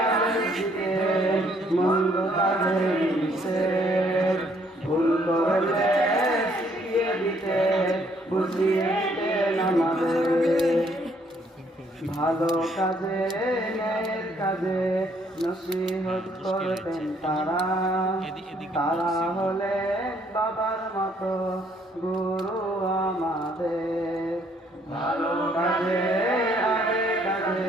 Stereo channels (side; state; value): both; normal; correlation 0.66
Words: আদেশ দিতেন, মন্দ কাজে নিষেধ, ভুল করলে শিখিয়ে দিতেন, বুঝিয়ে দিতেন আমাদের। ভালো কাজে ন্যায়ের কাজে নসিহত করতেন তারা, তারা হলেন বাবার মতো গুরু আমাদের। ভালো কাজে আগে